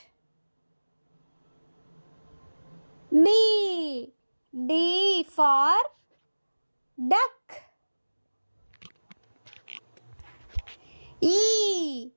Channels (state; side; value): inverted; both; correlation -1.00